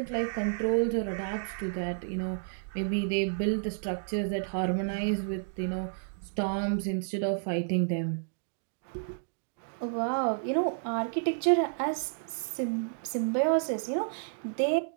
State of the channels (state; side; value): silent; left; digital silence